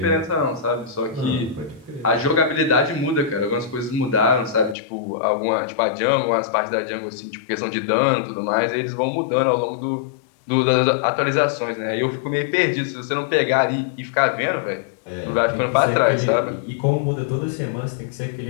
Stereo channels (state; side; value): drops out; right; at 4.8 s